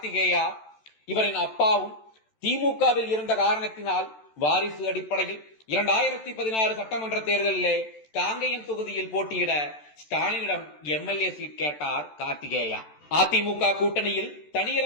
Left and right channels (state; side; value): late; right; 14 ms